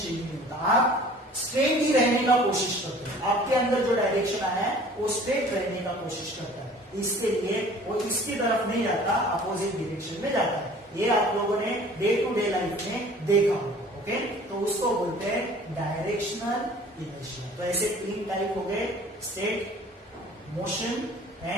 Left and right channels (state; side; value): normal; both; correlation 0.48